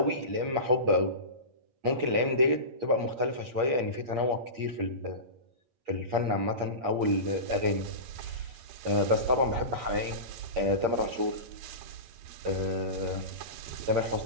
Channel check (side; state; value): left; late; 8.6 ms